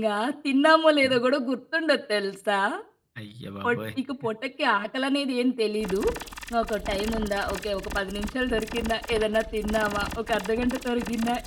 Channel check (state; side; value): identical; both; correlation 1.00